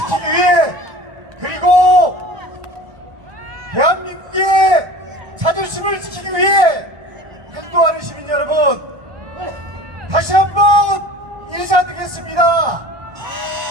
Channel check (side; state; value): left; late; 1.3 ms